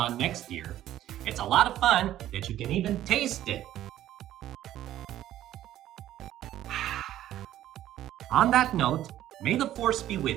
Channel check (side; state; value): left; quieter; 12.9 dB